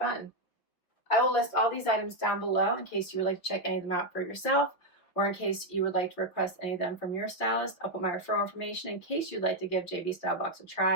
I will list all these items down below in case you would like to check any of them out for yourself, or in case you would like to request any of them from your stylist. I'll put my referral information in case you'd like to give JB Stylebox a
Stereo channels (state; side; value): late; right; 6.0 ms